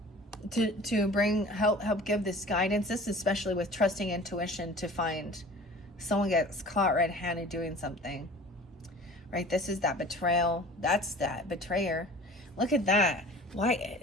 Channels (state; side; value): normal; both; correlation 0.44